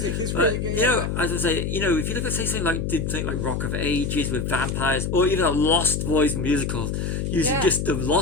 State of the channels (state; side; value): noise; left; hum, 2 dB below the sound